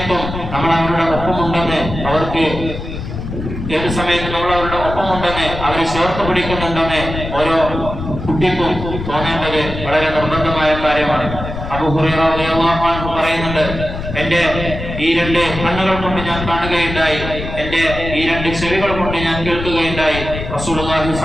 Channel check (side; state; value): left; noise; rumble, 7 dB below the sound